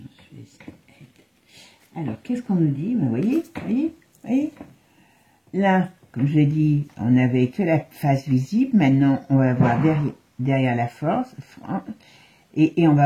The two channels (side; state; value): both; identical; correlation 1.00